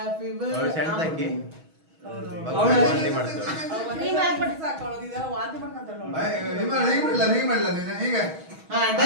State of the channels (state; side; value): late; left; 6.2 ms